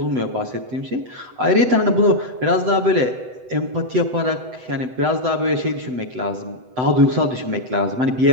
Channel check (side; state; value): left; late; 7.9 ms